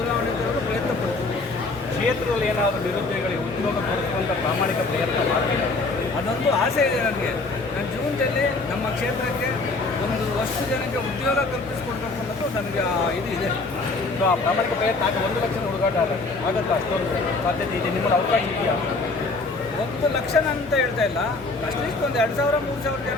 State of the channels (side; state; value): right; quieter; 3.5 dB